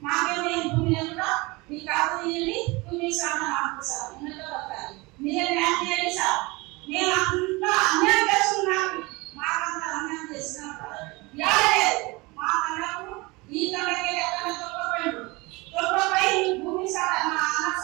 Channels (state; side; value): quieter; left; 24.3 dB